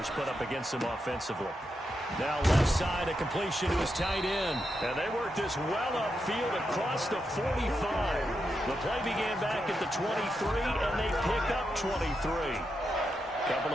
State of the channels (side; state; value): both; normal; correlation 0.85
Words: put up against them offensively. Now left side, a completion to his tight end. And they work this well upfield across the 45. The play began back at the 23, and they pick up 23. Couple